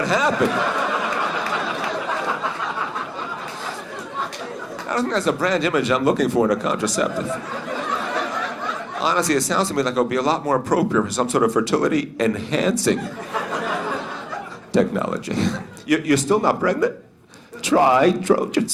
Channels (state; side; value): identical; both; correlation 1.00